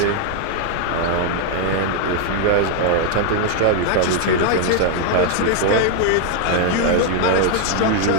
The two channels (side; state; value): both; different; correlation 0.00